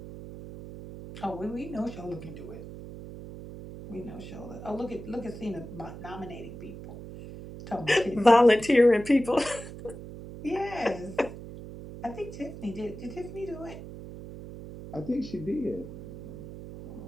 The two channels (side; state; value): right; noise; hum, 12 dB below the sound